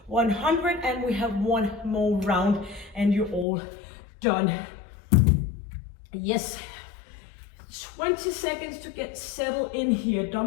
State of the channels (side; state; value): right; drops out; at 3.5 s